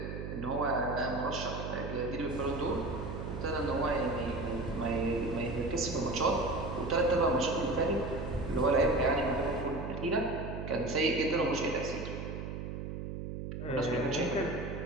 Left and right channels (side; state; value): right; noise; hum, 6 dB below the sound